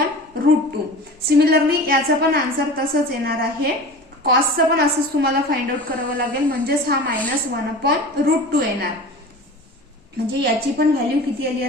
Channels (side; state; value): both; normal; correlation 0.36